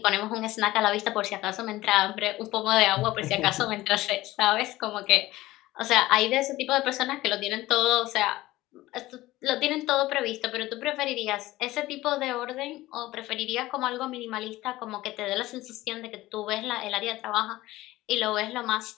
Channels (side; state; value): right; quieter; 17.4 dB